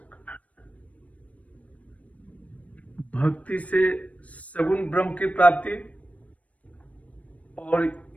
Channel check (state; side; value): late; right; 0.067 ms